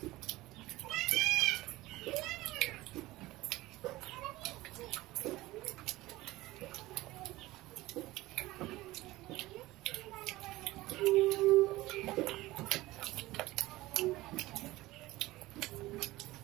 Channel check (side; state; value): left; quieter; 18.5 dB